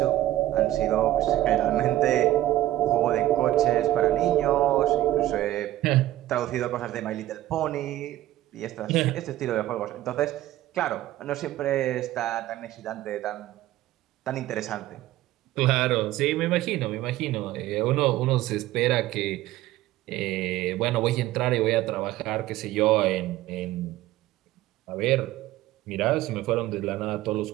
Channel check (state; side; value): quieter; left; 14.9 dB